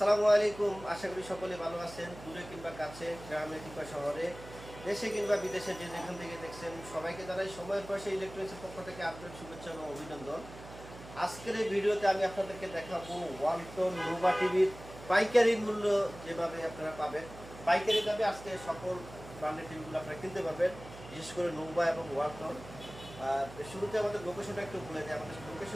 আলাইকুম। আশা করি সকলে ভালো আছেন। দূরে কিংবা কাছে, গ্রামে কিংবা শহরে, দেশে কিংবা বিদেশে যে যেখান থেকে দেখছেন সবাইকে জানাই সময়ের পাশে ইলেকট্রনিক্সের পক্ষ থেকে আপনার শুভেচ্ছা ও অভিনন্দন। আজকের এই ভিডিওতে আমি আপনাদেরকে দেখাবো ওয়ালটন নোভা টিভির পাইকারি মূল্য যেভাবে আপনারা পাবেন। পাইকারি দামে আজকে সকল ব্র্যান্ডের টিভিগুলো আপনারা কিনতে পারবেন, বিশেষ করে নোভা এবং ওয়ালটন। শুরুতে আমাদের লোকেশনটা একটু বলে দিই। আমাদের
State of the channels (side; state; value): right; noise; hum, 16 dB below the sound